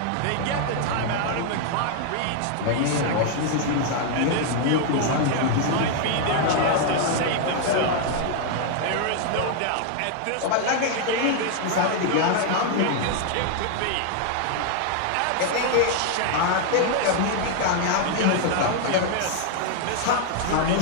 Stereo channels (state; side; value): different; both; correlation 0.00